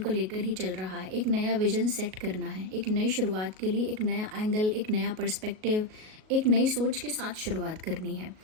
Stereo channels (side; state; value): left; late; 37 ms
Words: लेकर ही चल रहा है। एक नया विजन सेट करना है, एक नई शुरुआत के लिए एक नया एंगल, एक नया पर्सपेक्टिव, एक नई सोच के साथ शुरुआत करनी है।